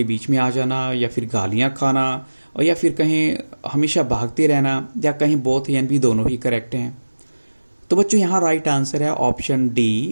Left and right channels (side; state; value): both; inverted; correlation -1.00